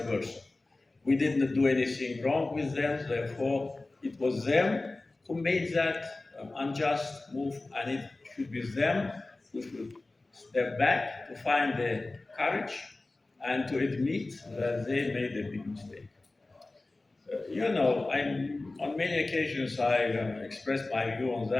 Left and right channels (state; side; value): quieter; right; 3.1 dB